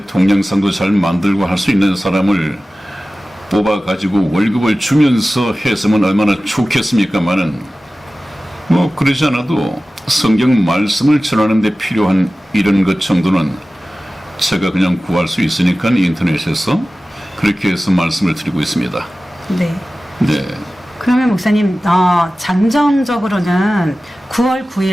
동영상도 잘 만들고 할 수 있는 사람을 뽑아가지고 월급을 주면서 했으면 얼마나 좋겠습니까마는, 뭐 그러지 않아도 성경 말씀을 전하는 데 필요한 이런 것 정도는 제가 그냥 구할 수 있으니까 인터넷에서 그렇게 해서 말씀을 드리고 있습니다. 네. 네. 그러면 목사님, 잠정적으로는 9월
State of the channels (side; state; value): both; normal; correlation 0.96